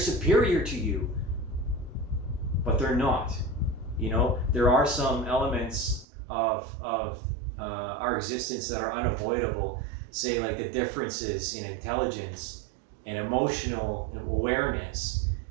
to you, but they're not. You know, there are some elements of our existence that are unavoidable, say like the differences in intelligence and emotional awareness.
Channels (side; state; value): left; drops out; at 6.1 s